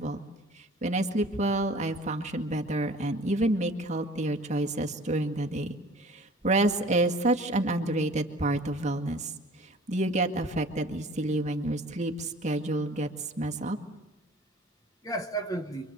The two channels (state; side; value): normal; both; correlation 0.47